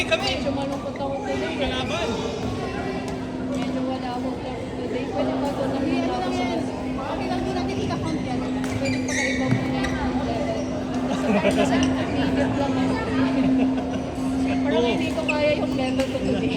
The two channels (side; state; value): both; identical; correlation 1.00